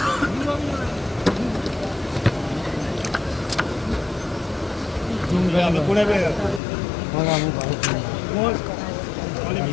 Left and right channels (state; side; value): drops out; right; at 6.6 s